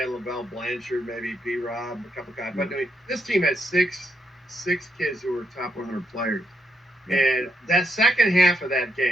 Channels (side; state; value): both; normal; correlation 0.78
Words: LaBelle Blanchard, maybe B. Rob, a couple guys. Yeah. But I mean, this team had six kids who were top 100 players. Yeah. And that second half of that